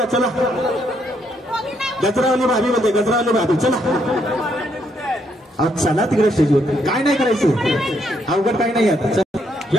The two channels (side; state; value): both; normal; correlation 0.74